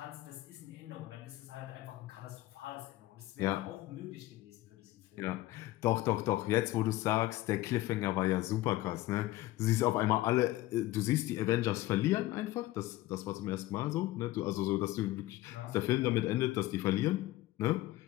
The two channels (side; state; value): right; quieter; 16.8 dB